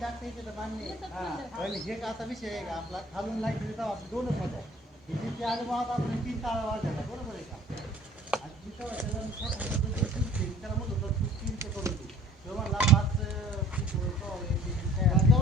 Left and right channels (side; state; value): both; normal; correlation 0.51